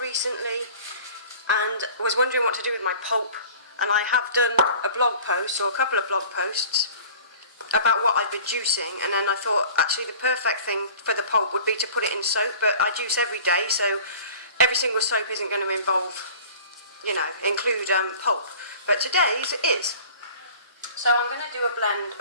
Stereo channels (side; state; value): both; inverted; correlation -0.44